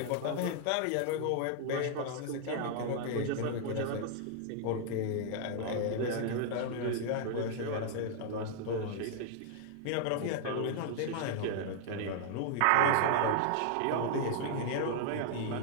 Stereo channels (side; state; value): both; different; correlation 0.00